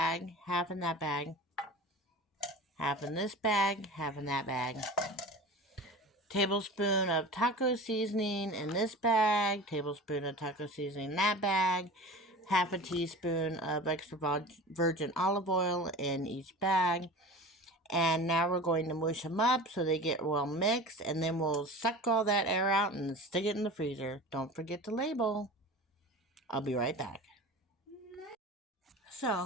half in that bag, half in this bag, half in that bag. Tablespoon of taco seasoning in this bag, tablespoon of taco seasoning in that bag, half a teaspoon of extra virgin olive oil in each bag. And now we're going to mush them up so they get well mixed, and then we'll suck all that air out and stick it in the freezer. Don't forget to label. I'll be right back.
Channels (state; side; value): normal; both; correlation 0.35